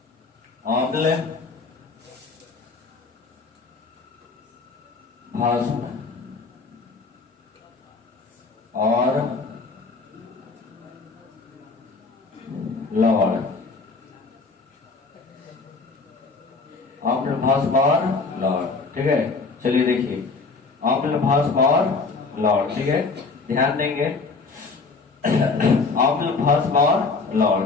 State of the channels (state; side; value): quieter; right; 4.2 dB